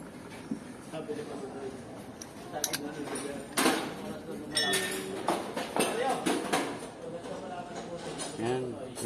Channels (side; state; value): both; identical; correlation 1.00